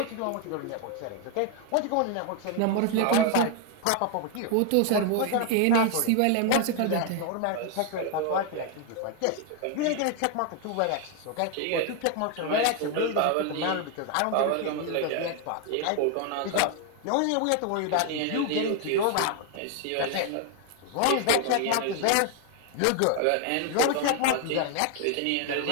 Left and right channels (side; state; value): both; different; correlation 0.01